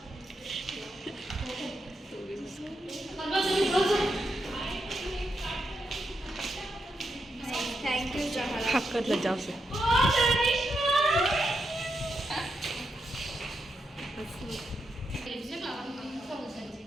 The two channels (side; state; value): both; normal; correlation 0.84